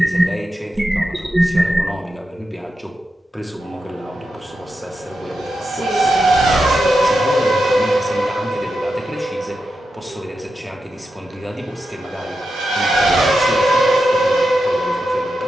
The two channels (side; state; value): both; normal; correlation 0.88